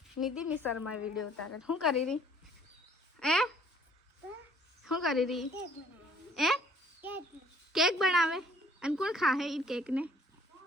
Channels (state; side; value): normal; both; correlation 0.58